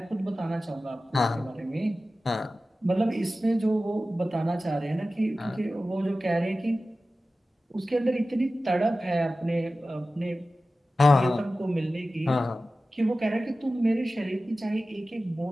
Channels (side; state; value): both; normal; correlation 0.95